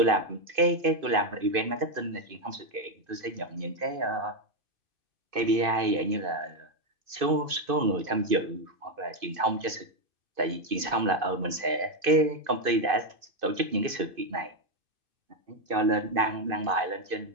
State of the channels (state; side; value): late; left; 2.5 ms